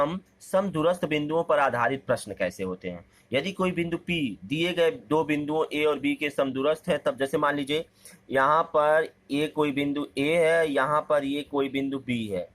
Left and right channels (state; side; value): identical; both; correlation 1.00